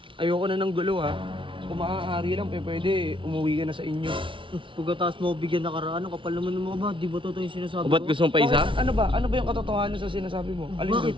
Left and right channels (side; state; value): left; late; 0.25 ms